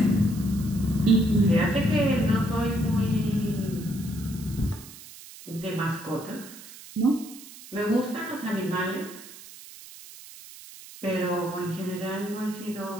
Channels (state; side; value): noise; right; hiss, 17 dB below the sound